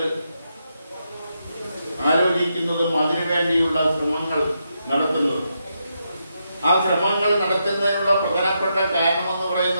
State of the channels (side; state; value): both; inverted; correlation -0.83